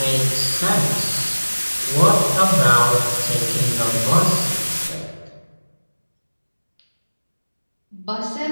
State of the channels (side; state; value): both; inverted; correlation -1.00